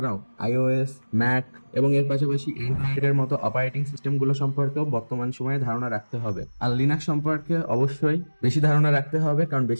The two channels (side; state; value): both; inverted; correlation -1.00